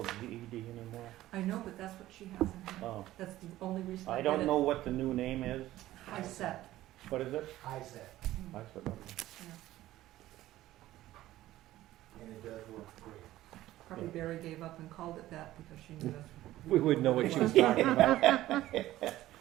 GED anymore. I know, but that's what she has in here. Oh, That's the only reason I I did don't it. know what the new name is. High set. What is it? I said, I said, okay. and it does work great. Probably Yeah. Barry gave up and called it that because she knew that's. We would know what she was talking about.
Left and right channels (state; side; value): quieter; left; 15.1 dB